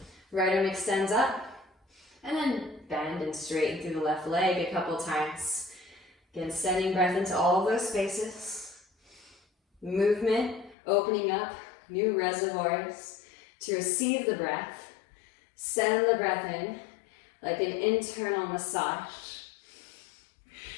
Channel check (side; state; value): right; drops out; at 10.8 s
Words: Right arm extends up. And then bend and straighten through the left leg a couple times. Again, sending breath into all of those spaces. Movement, opening up new reservoirs to receive the breath. Send the breath in like an internal massage.